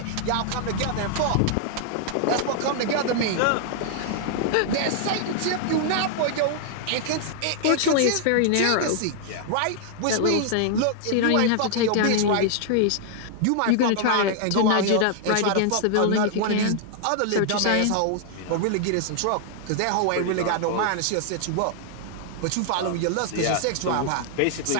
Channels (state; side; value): different; both; correlation 0.00